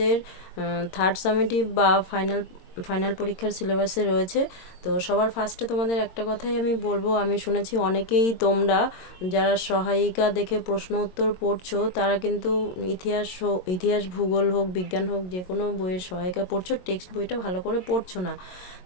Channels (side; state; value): right; late; 22 ms